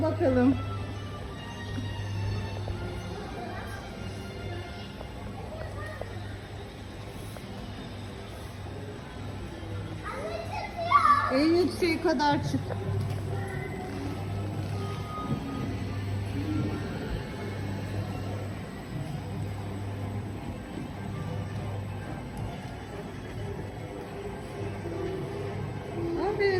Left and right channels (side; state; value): both; identical; correlation 1.00